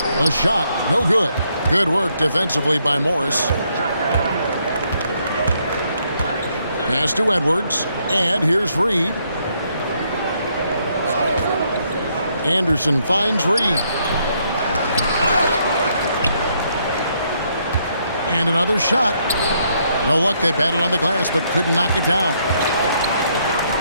The shot, no good. Good work defensively by Morris. Pass to Edwards. And here's Reed. Anderson finds Reed. And another shot. No luck. They battled on the glass but couldn't knock it down.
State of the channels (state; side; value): inverted; both; correlation -0.73